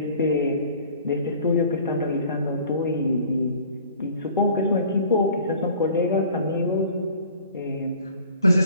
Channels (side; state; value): both; inverted; correlation -0.50